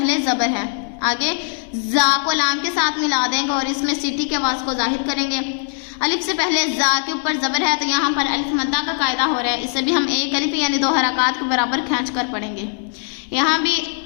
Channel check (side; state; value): right; silent; 58 dB below the other